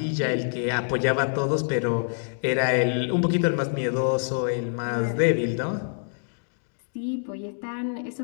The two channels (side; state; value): right; silent; digital silence